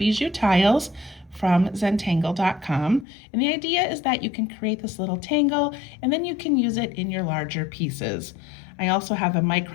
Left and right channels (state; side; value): drops out; right; at 3.1 s